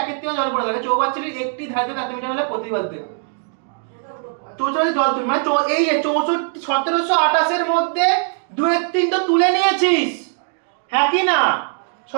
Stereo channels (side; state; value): left; silent; 66 dB below the other